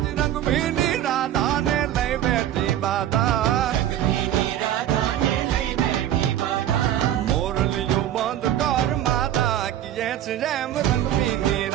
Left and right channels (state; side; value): quieter; left; 11.7 dB